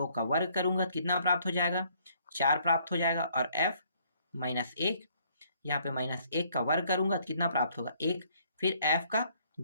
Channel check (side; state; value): both; inverted; correlation -0.64